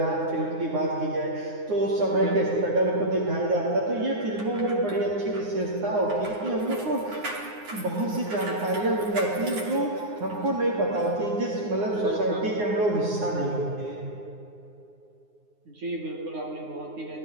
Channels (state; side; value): late; left; 9.7 ms